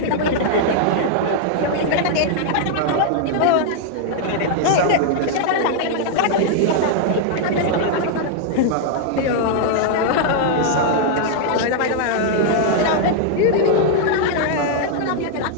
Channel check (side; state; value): both; different; correlation -0.01